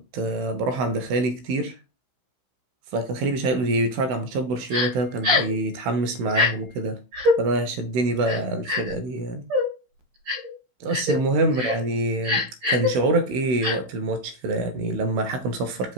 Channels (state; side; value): late; left; 16 ms